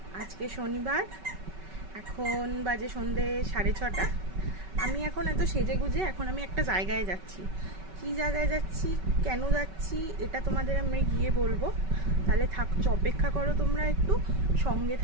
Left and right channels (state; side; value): late; left; 5.3 ms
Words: আজকে শনিবার, এখন বাজে সন্ধে 6:30। আমি এখন এত সেজে গুজে এখন আমি একটা জায়গায় যাচ্ছি। কি জায়গায় যাচ্ছি, কেন যাচ্ছি, এটা তোমাদের আমি গিয়ে বলবো। তাহলে অপেক্ষা করো, তোমরা একটু সঙ্গে